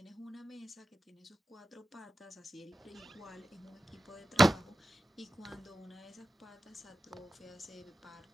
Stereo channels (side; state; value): both; normal; correlation 0.92